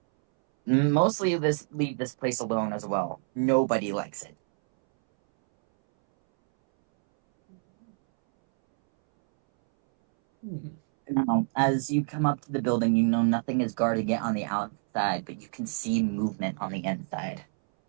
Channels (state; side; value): silent; left; 60 dB below the other